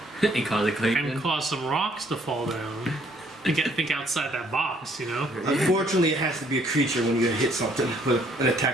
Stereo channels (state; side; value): normal; both; correlation 0.64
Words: and cause a click. and cause some rocks to fall down? Think outside that box, you know. Unfortunately, it has to be a creature when you're gonna hit something with an